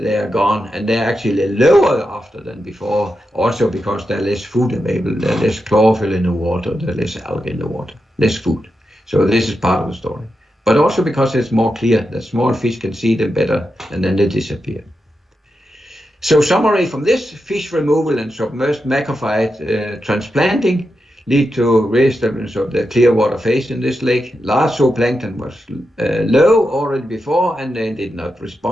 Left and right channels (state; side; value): normal; both; correlation 0.88